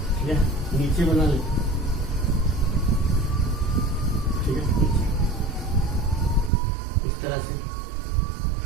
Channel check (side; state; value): left; drops out; at 6.5 s